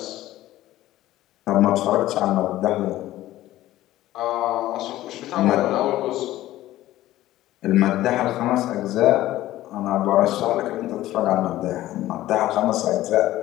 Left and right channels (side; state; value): right; quieter; 15.1 dB